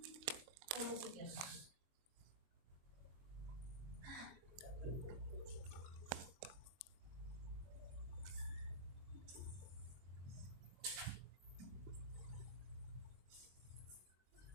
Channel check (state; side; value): late; left; 23 ms